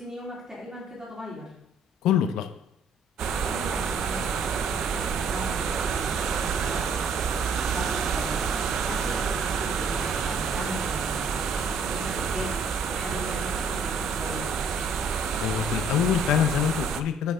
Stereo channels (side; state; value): both; normal; correlation 0.59